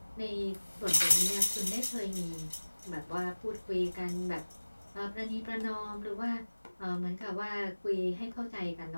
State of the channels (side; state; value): both; inverted; correlation -1.00